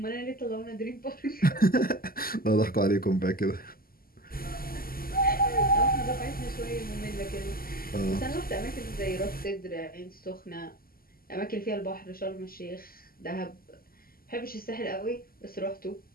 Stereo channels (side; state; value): right; late; 0.42 ms